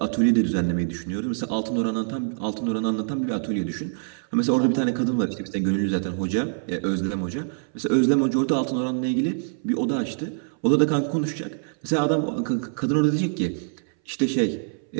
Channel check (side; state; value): left; silent; 60 dB below the other